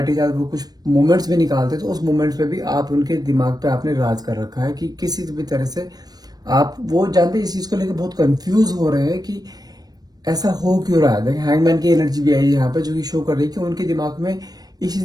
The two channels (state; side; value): late; left; 0.19 ms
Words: के साथ वो कुछ मोमेंट्स भी निकालते हैं, तो उस मोमेंट्स पे भी आप उनके दिमाग पे आपने राज कर रखा है कि किसी भी तरह से आप, वो जानते हैं, इस चीज को लेकर बहुत कंफ्यूज हो रहे हैं कि ऐसा हो क्यों रहा है। देखिए, हैंगमैन की एनर्जी भी आई है यहाँ पे, जो कि शो कर रही है कि उनके दिमाग में इस